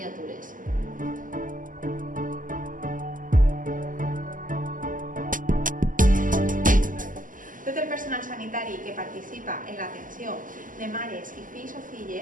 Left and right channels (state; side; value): late; left; 0.38 ms